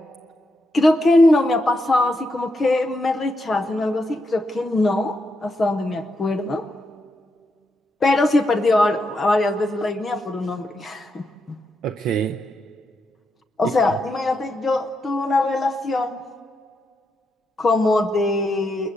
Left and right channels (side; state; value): both; normal; correlation 0.83